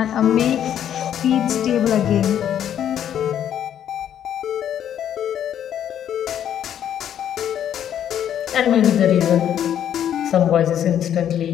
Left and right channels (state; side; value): quieter; right; 10.0 dB